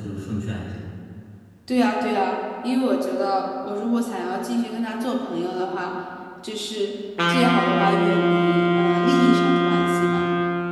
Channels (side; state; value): both; identical; correlation 1.00